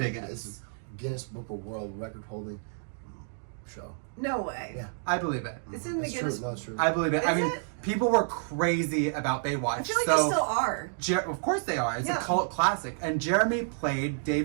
This is Guinness Book of World Record holding show. No way. Yeah. I believe it. It's in the It's Guinness. true. No, it's true. I believe it. Is I mean, it? people were crazy about Baywatch. I feel like they still are. Of course they are. It's Yeah. a cult classic. And Jeremy played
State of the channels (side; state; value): left; silent; digital silence